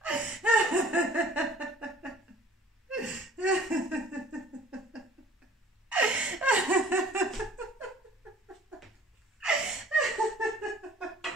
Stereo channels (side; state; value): both; normal; correlation 0.52